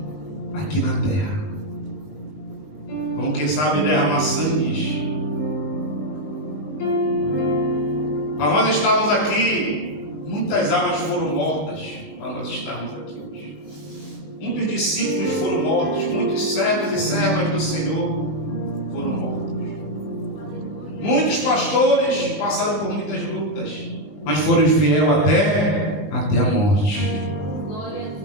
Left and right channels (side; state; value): right; late; 20 ms